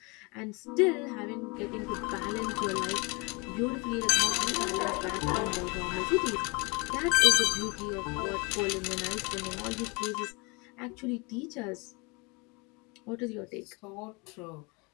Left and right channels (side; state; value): right; quieter; 29.9 dB